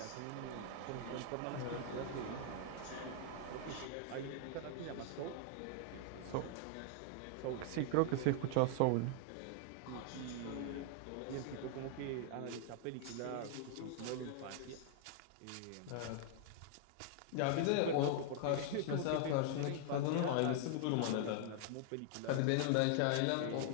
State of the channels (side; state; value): both; different; correlation 0.00